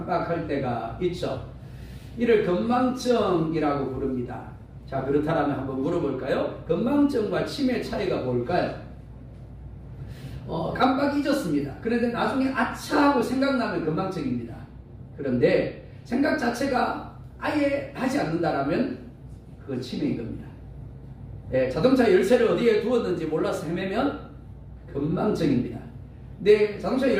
때가 있죠. 이를 건망증이라고 부릅니다. 자, 그렇다면 한번 물어볼까요? 건망증과 치매 차이가 뭘까요? 깜빡 잊었습니다. 그런데 나중에 아차 하고 생각나면 건망증입니다. 그런데 생각 자체가 아예 하지 않는다라면 그건 치매인 겁니다. 자동차 열쇠를 어디에 두었는지 몰라서 헤매면 건망증입니다. 내 자동차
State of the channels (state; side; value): identical; both; correlation 1.00